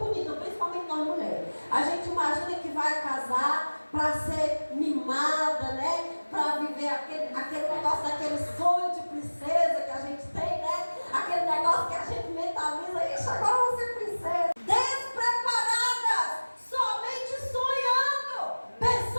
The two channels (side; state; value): both; inverted; correlation -1.00